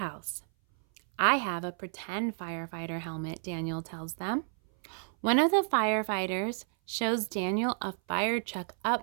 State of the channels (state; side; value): silent; left; 57 dB below the other